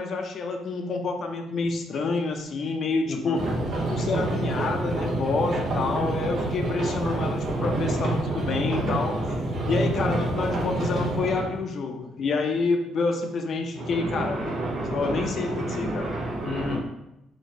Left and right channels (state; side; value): normal; both; correlation 0.74